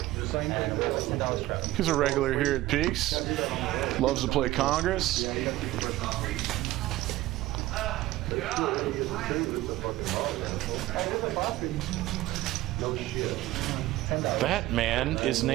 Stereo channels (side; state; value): left; quieter; 16.9 dB